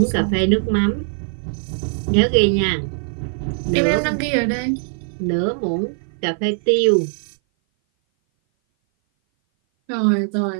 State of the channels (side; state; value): left; silent; 58 dB below the other